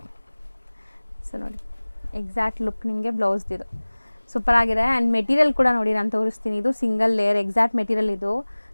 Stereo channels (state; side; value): inverted; both; correlation -1.00